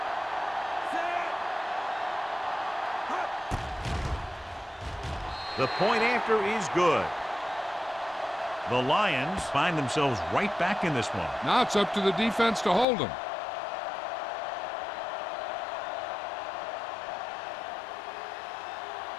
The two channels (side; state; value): right; drops out; at 12.9 s